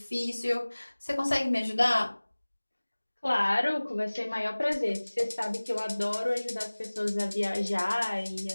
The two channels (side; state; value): both; inverted; correlation -1.00